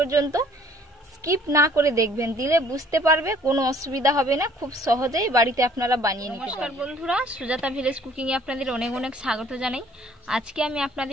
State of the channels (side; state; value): both; normal; correlation 0.57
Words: স্কিপ না করে দেখবেন, দিলে বুঝতে পারবে, কোনো অসুবিধা হবে না, খুব সহজেই বাড়িতে আপনারা বানিয়ে নিতে পারবেন। নমস্কার বন্ধুরা, সুজাতা ভিলেজ কুকিংয়ে আপনাদের অনেক অনেক স্বাগত জানাই। আজকে আমি